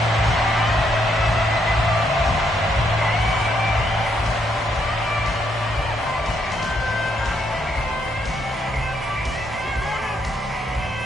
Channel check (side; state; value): both; normal; correlation 0.74